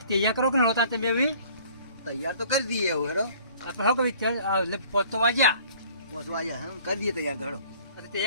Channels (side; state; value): both; inverted; correlation -0.53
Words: તૈયાર કરો કે નહોતા તમે હવે તૈયાર તો કરી દઈએ હવે હેડો આપણે હવે એટલે પહોંચતો વાગ્યા પહોંચવા આવ્યા હા કરી દઈએ તૈયાર તો હેડો એટલે